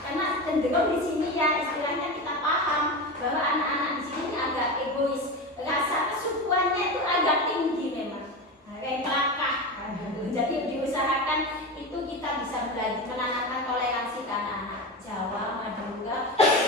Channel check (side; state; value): both; normal; correlation 0.23